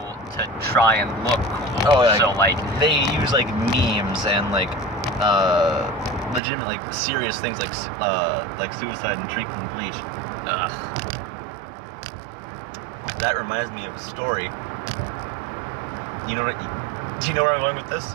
to try and look cool. Oh, yeah. So like, They use like memes and like legitimate like serious things like suicide and drinking bleach. That reminds me of a story. You know what? Do you know where I'm going with this?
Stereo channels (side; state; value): left; drops out; at 6.4 s